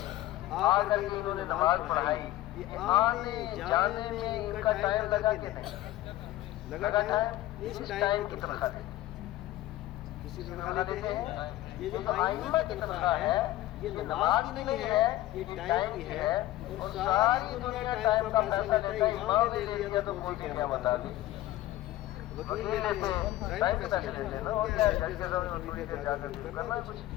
آ کر کے انہوں نے نماز پڑھائی، آنے جانے میں ان کا ٹائم لگا کہ نہیں لگا؟ ٹائم اس ٹائم کی تنخواہ دیتے ہیں، کسی تنخواہ دیتے ہیں، یہ جو ائمہ کی تنخواہ ہے یہ نماز کی نہیں ہے، یہ ٹائم کی ہے، اور ساری دنیا ٹائم کا پیسہ لیتا ہے، امام نے لے لیا تو کوئی کیا بتا دے، وکیل لیتے ہیں ٹائم کے پیسے لیتے ہیں نا، اور کیا جج کے سامنے تھوڑی دیر جا کر کے کرنا ہے کچھ،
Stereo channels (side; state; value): right; quieter; 15.5 dB